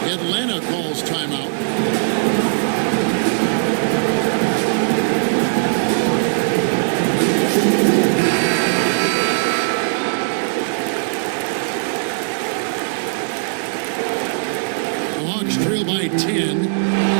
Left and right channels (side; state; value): left; silent; 66 dB below the other